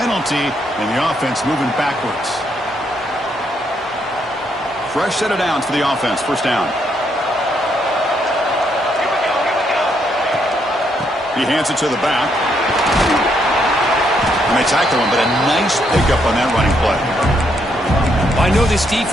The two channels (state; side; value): normal; both; correlation 0.75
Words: and the offense moving backwards. Fresh set of downs for the offense. First down. He hands it to the back. And they tackle him, but a nice pickup on that running play. I know this